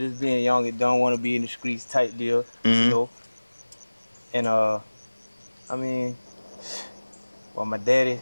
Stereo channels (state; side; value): inverted; both; correlation -1.00